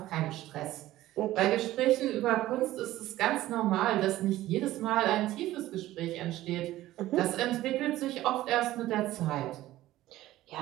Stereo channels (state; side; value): quieter; left; 15.4 dB